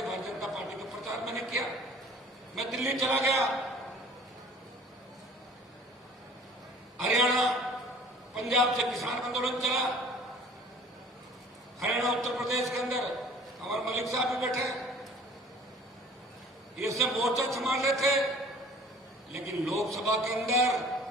भारतीय जनता पार्टी का प्रचार मैंने किया। मैं दिल्ली चला गया, हरियाणा, पंजाब से किसान आंदोलन चला, हरियाणा, उत्तर प्रदेश के अंदर हमारे मलिक साहब भी बैठे, ये सब मोर्चा संभाल रहे थे। लेकिन लोकसभा के अंदर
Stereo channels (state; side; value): normal; both; correlation 0.50